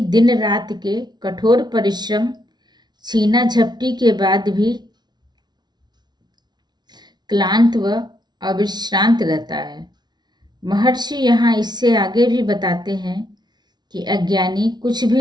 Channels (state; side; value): late; left; 0.20 ms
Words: दिन रात के कठोर परिश्रम छीना झपटी के बाद भी क्लांत व अविश्रांत रहता है। महर्षि यहाँ इससे आगे भी बताते हैं कि अज्ञानी कुछ